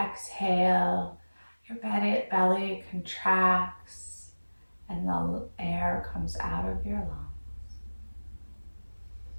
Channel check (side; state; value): both; inverted; correlation -1.00